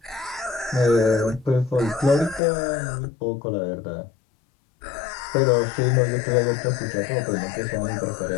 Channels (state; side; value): drops out; right; at 2.4 s